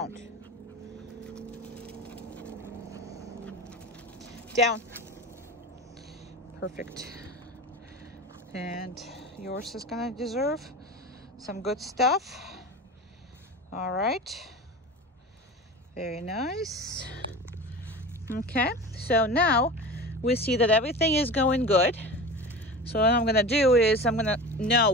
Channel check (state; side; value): normal; both; correlation 0.32